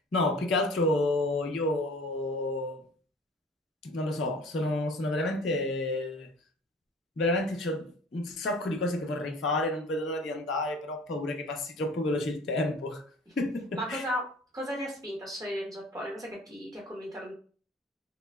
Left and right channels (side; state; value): both; normal; correlation 0.46